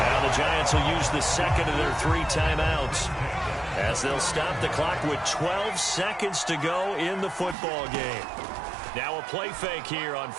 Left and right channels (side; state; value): left; drops out; at 7.6 s